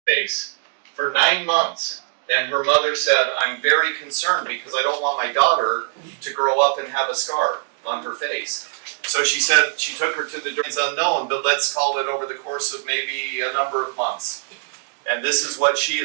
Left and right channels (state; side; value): silent; left; digital silence